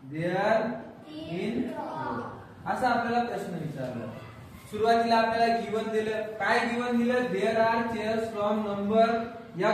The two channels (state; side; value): identical; both; correlation 1.00